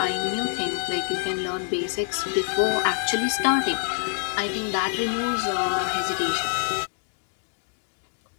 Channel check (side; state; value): right; silent; 61 dB below the other